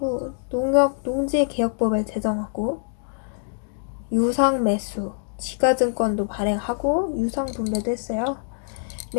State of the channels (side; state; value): right; silent; digital silence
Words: 농지개혁법을 제정하고 유상 매수, 지가증권도 발행하고 유상 분배도 했어요.